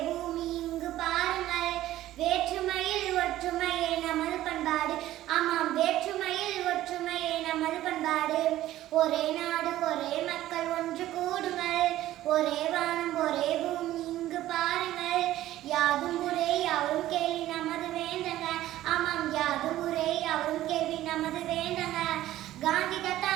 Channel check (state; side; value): quieter; left; 14.4 dB